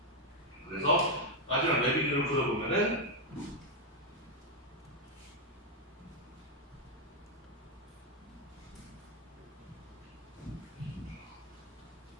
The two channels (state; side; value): normal; both; correlation 0.02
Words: 그래서 마지막 레비뉴를 그려보면은